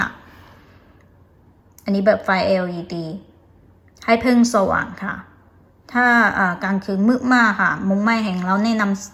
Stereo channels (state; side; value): identical; both; correlation 1.00